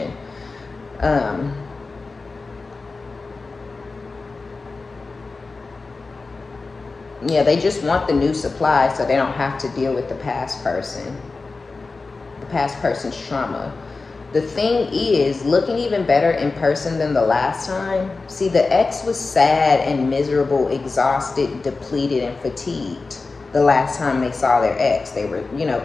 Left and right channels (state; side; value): quieter; right; 3.9 dB